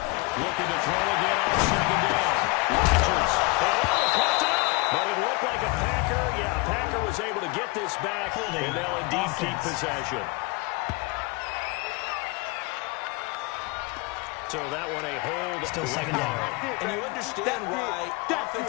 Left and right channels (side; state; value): right; quieter; 25.6 dB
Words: to throw again on 2nd down. Rodgers. But it looked like a Packer. Yeah, Packer was able to get this back, and they'll indeed keep possession. So that one a hold. Still 2nd down. And you understand why